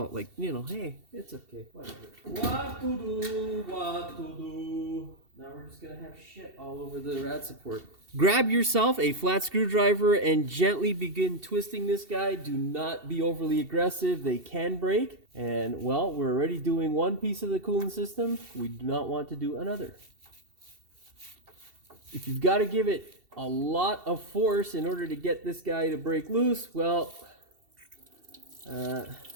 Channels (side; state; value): left; late; 2.7 ms